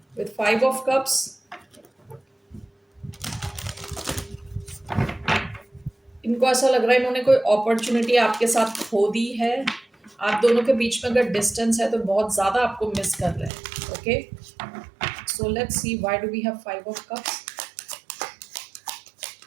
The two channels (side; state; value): left; drops out; at 13.5 s